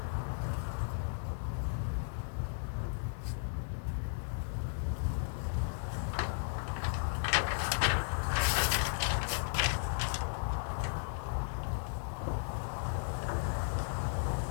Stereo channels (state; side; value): silent; right; digital silence